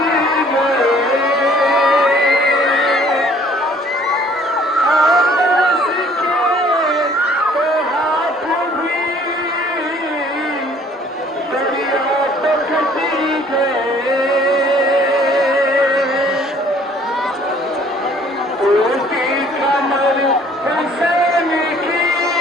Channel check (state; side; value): normal; both; correlation 0.57